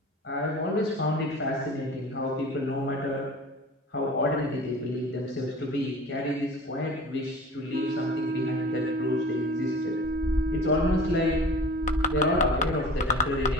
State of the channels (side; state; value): both; normal; correlation 0.40